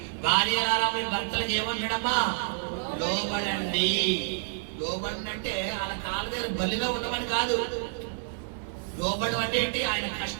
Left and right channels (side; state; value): left; silent; digital silence